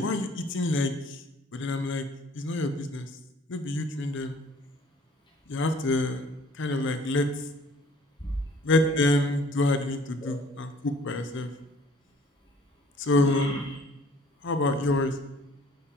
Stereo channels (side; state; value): both; normal; correlation 0.55